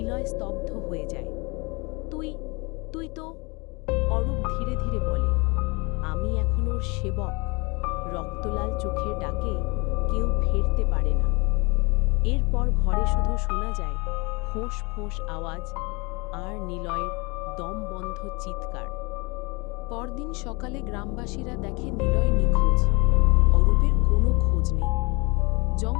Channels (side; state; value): right; quieter; 28.0 dB